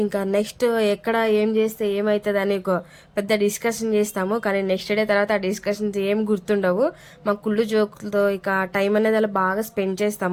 ఇంకా నెక్స్ట్ ఎక్కడ ఏం చేస్తే ఏమవుతుంది అని ఒక పెద్ద డిస్కషన్ చేస్తాము. కానీ నెక్స్ట్ డే తర్వాత ఆ డిస్కషన్స్ ఏం గుర్తుండవు. మా కుళ్ళు జోకులతో ఇక టైం అనేది అలా బాగా స్పెండ్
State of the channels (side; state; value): both; identical; correlation 1.00